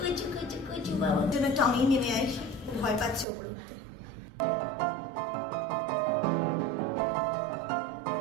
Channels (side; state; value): left; drops out; at 3.2 s